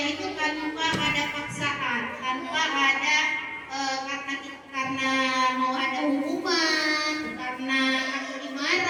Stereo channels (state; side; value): identical; both; correlation 1.00